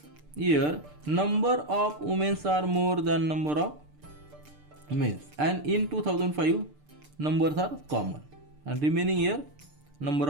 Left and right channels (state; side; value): late; left; 6.7 ms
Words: year, number of women are more than number of men, and in 2005 numbers are common, and remaining year number